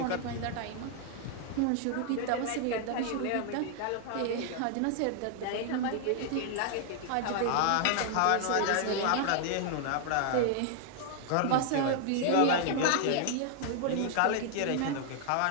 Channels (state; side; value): different; both; correlation 0.00